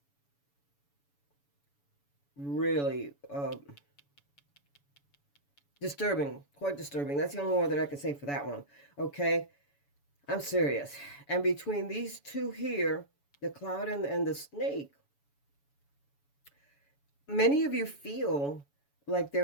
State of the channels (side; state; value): right; late; 7.0 ms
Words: really disturbing, quite disturbing. That's the only word that I can say for that one. Okay, I'm serious. And between these two here, the cloud and the snake, many of you feel like